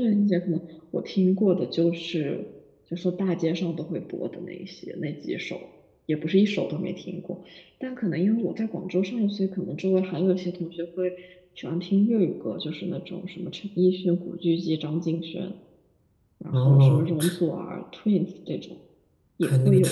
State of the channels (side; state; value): both; identical; correlation 1.00